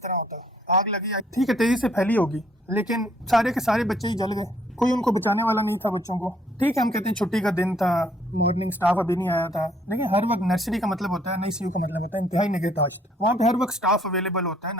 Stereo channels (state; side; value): normal; both; correlation 0.65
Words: होता। आग लगी ठीक है, तेजी से फैली होगी, लेकिन सारे के सारे बच्चे ही जल गए, कोई उनको बचाने वाला नहीं था बच्चों को। ठीक है, हम कहते हैं छुट्टी का दिन था, मॉर्निंग स्टाफ अभी नहीं आया था, लेकिन हर वक्त नर्सरी का मतलब होता है, NICU का मतलब होता है इंतहाई निगहदाश्त। वहाँ पे हर वक्त स्टाफ अवेलेबल होता है,